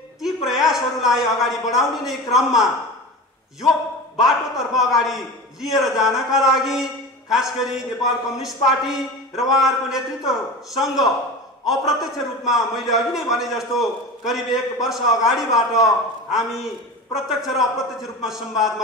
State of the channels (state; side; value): normal; both; correlation 0.31